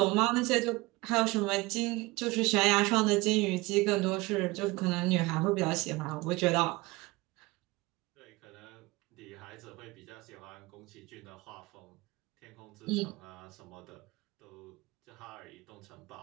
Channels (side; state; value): left; quieter; 22.5 dB